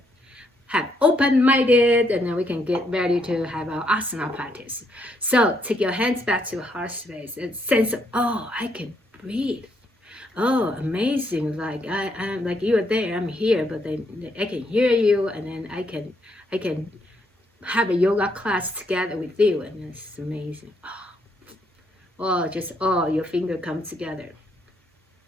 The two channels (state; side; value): normal; both; correlation 0.74